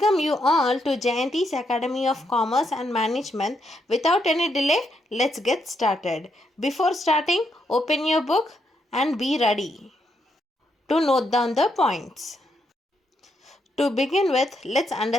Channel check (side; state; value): both; normal; correlation 0.78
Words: you all to Jayanthi's Academy of Commerce and Management. Without any delay, let's get started. Before starting, open your book and be ready to note down the points. To begin with, let's